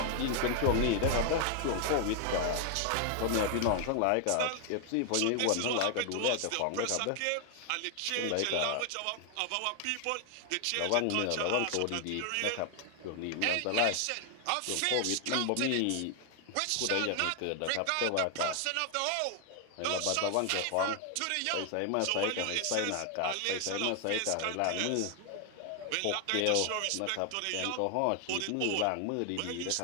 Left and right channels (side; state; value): both; different; correlation 0.00